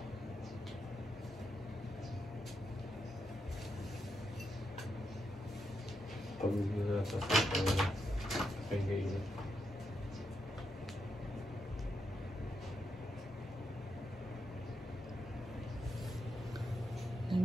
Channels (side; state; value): both; normal; correlation 0.83